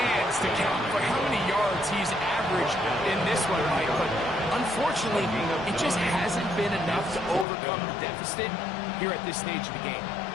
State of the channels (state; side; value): drops out; right; at 7.5 s